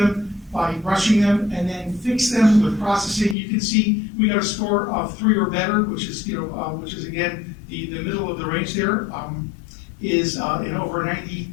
by brushing them and then fixed them with processing. You can see we got a score of 3 or better, which is again the middle of the range there, is in over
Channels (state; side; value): drops out; right; at 3.4 s